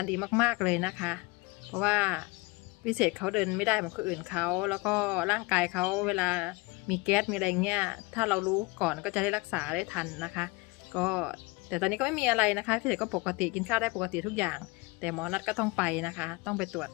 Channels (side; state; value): right; quieter; 25.1 dB